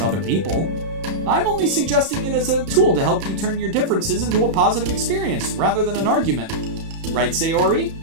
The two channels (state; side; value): late; left; 32 ms